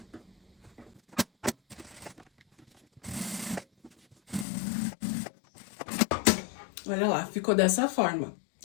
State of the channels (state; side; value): drops out; right; at 4.5 s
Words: Olha lá, ficou dessa forma,